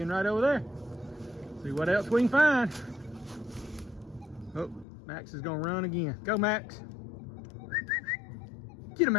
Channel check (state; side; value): drops out; right; at 4.9 s